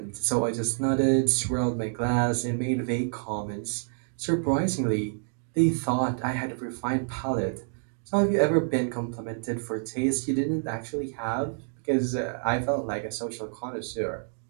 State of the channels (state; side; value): silent; left; digital silence